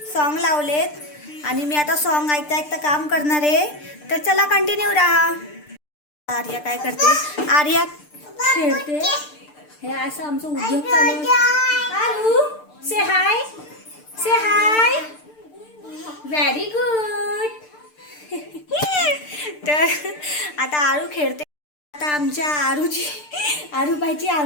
सॉन्ग लावलेत आणि मी आता सॉन्ग ऐकता ऐकता काम करणार आहे। तर चला कंटिन्यू राहा। आर्या काय करते? आर्या खेळते। हे असं आमचं उद्योग चालू आहे। आरू से हाय, से हाय, व्हेरी गुड। तर आता आरू खेळते। आता आमच्या आरूबाईची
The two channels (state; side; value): late; right; 6.7 ms